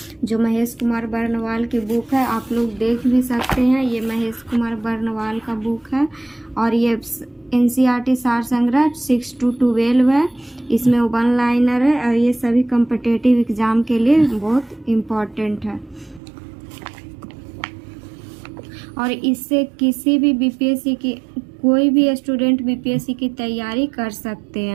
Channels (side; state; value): left; drops out; at 16.2 s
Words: जो महेश कुमार बर्नवाल की बुक है। आप लोग देख भी सकते हैं, ये महेश कुमार बर्नवाल का बुक है। और ये एनसीईआरटी सार संग्रह 6 to 12 है। इसमें 1 लाइनर है और ये सभी कॉम्पिटिटिव एग्जाम के लिए बहुत इम्पोर्टेंट है। और इससे किसी भी बीपीएससी की कोई भी स्टूडेंट बीपीएससी की तैयारी कर सकते